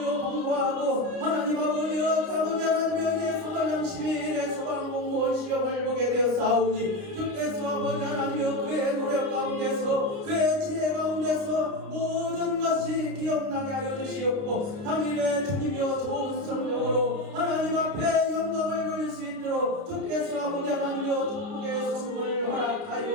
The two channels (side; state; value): left; late; 29 ms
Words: 공부하고 하나님 아버지여 아버지 하나님이여 이제 3월 30일에 소방공무원 시험을 보게 되었사오니 주께서 아버지 하나님이여 그의 노력 가운데서 그의 지혜 가운데서 모든 것이 기억나게 하여 주시옵고 당일에 주님이여 좋은 성령으로 하나님 앞에 영광을 돌릴 수 있도록 주께서 아버지 하나님이여 축복의 선물을